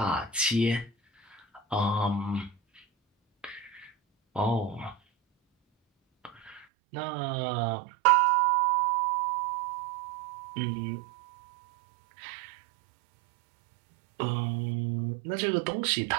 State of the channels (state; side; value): drops out; left; at 6.7 s